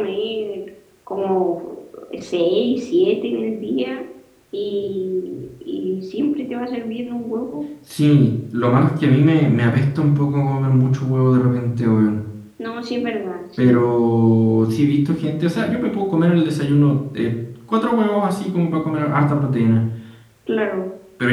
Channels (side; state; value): both; identical; correlation 1.00